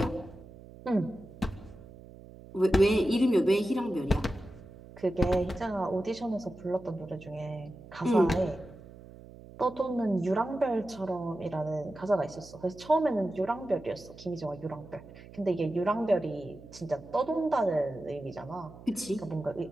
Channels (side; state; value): right; noise; hum, 18 dB below the sound